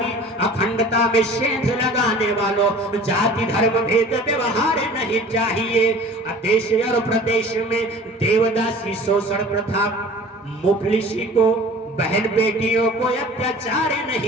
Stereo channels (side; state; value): both; normal; correlation 0.45